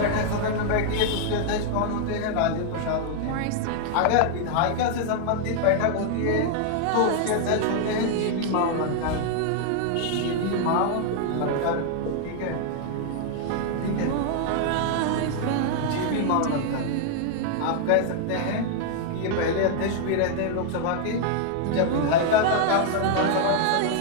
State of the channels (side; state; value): both; different; correlation 0.00